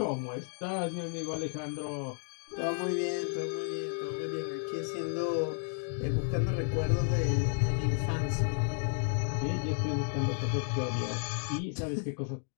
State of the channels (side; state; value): right; silent; 56 dB below the other